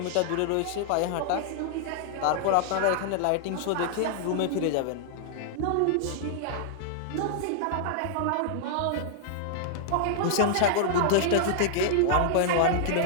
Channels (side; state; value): both; different; correlation -0.01